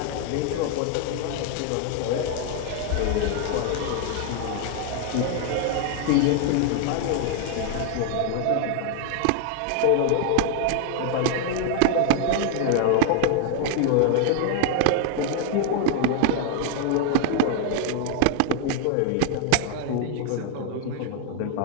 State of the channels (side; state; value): both; different; correlation 0.00